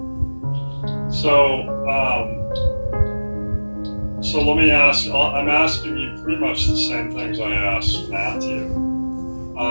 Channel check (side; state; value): both; inverted; correlation -1.00